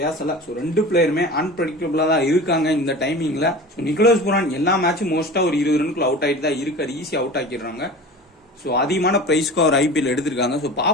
So 2 பிளேயருமே அன்பிரடிக்டபிளா தான் இருக்காங்க இந்த டைமிங்ல. ஸோ நிக்கோலஸ் புரான் எல்லா மேட்சும் மோஸ்டா ஒரு 20 ரன்குள்ள அவுட் ஆயிட்டு தான் இருக்காரு. ஈஸியா அவுட் ஆக்கிடுறாங்க. ஸோ அதிகமான பிரைஸ்க்கு அவர் ஐபிஎல் எடுத்திருக்காங்க. ஸோ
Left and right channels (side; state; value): both; normal; correlation 0.36